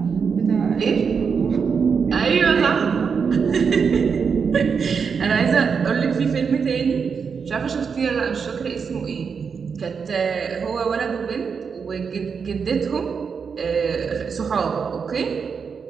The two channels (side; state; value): left; quieter; 6.0 dB